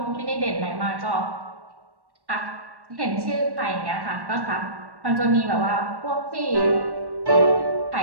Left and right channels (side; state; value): left; late; 1.1 ms